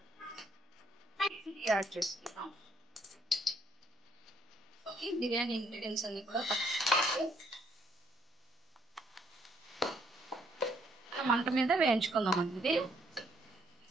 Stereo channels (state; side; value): normal; both; correlation 0.69